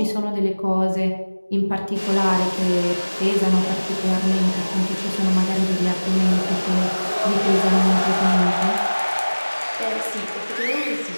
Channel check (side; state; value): both; inverted; correlation -1.00